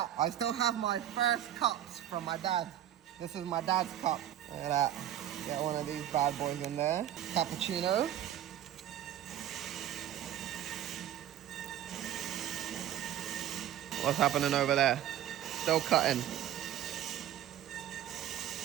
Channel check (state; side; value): quieter; left; 11.6 dB